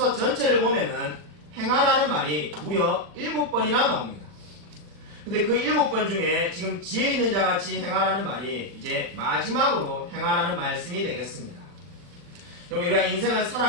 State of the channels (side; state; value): left; late; 40 ms